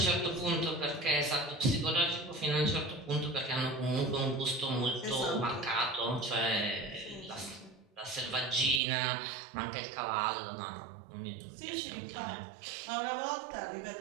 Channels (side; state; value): left; drops out; at 8.8 s